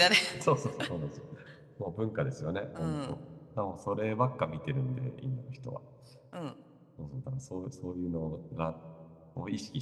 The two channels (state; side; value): identical; both; correlation 1.00